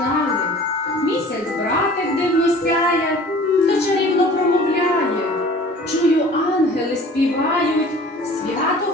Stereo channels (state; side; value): normal; both; correlation 0.46